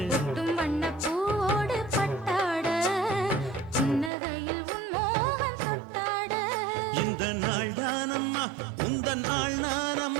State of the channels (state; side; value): drops out; left; at 4.1 s